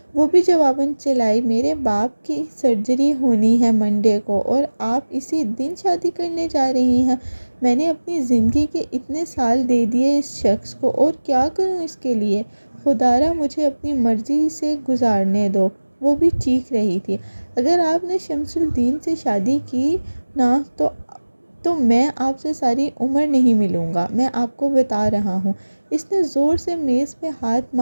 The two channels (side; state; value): both; inverted; correlation -1.00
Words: وہ بھی جواباً چلائی، میرے باپ کی سرجری ہونی ہے منڈے کو اور آپ اسی دن شادی کرنے جا رہی ہیں۔ میں نے اپنی زندگی کے اتنے سال دے دیے اس شخص کو، اور کیا کروں اس کے لیے؟ خدا را مجھے اپنی مرضی سے گزارنے دو۔ وہ بھی چیخ رہی تھی۔ اگر آپ نے شمس الدین سے شادی کی نا تو میں آپ سے ساری عمر نہیں ملوں گا، میں آپ کو بتا رہا ہوں۔ اس نے زور سے میز پہ ہاتھ